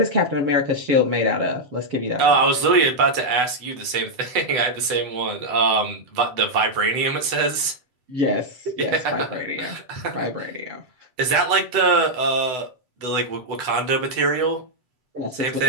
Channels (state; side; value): late; left; 7.9 ms